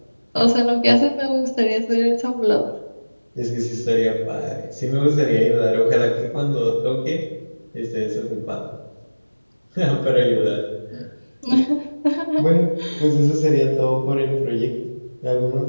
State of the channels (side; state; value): both; inverted; correlation -1.00